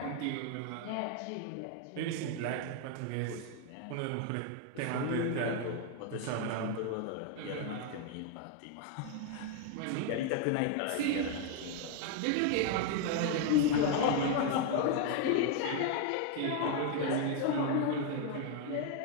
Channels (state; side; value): different; both; correlation 0.00